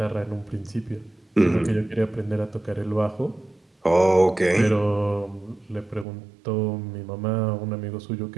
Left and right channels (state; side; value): drops out; left; at 6.1 s